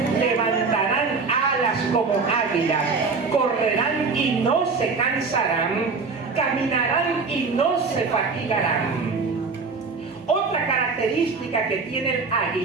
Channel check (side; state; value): left; quieter; 4.6 dB